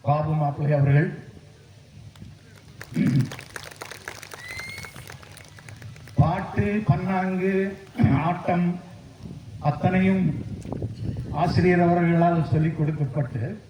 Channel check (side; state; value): both; identical; correlation 1.00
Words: பாபு மாப்பிள்ளை அவர்கள் பாட்டு, பன்னாங்கு, ஆட்டம் அத்தனையும் ஆசிரியர் அவர்களால் சொல்லிக் கொடுக்கப்பட்டு